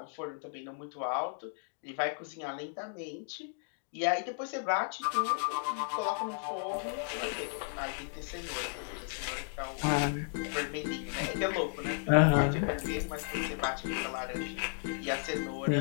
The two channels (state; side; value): silent; right; 55 dB below the other